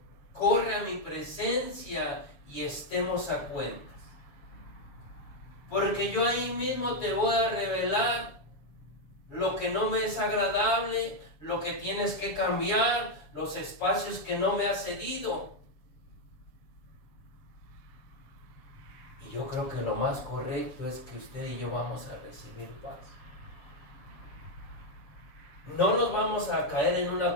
corre a mi presencia y estemos a cuentas. Porque yo ahí mismo te voy a revelar lo que no me es agradable, lo que tienes que cambiar, los espacios que no me has cedido. Y yo creo que lo más correcto es que usted y yo vamos a recibir paz. No nos vamos a caer en una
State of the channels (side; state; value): right; late; 7.1 ms